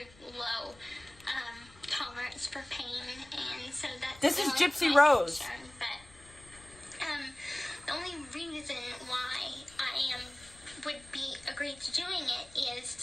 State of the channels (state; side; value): noise; left; rumble, 24 dB below the sound